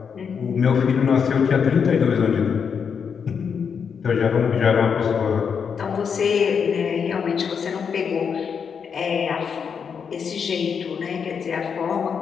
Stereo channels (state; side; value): quieter; right; 6.6 dB